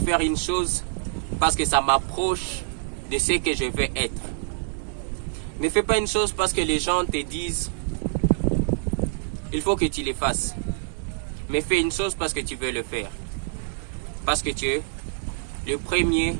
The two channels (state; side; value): silent; left; digital silence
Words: une chose parce que ça m'approche de ce que je veux être. Ne fais pas une chose parce que les gens te disent il faut que tu le fasses. Mais fais une chose parce que tu veux le faire. Parce que tu es le premier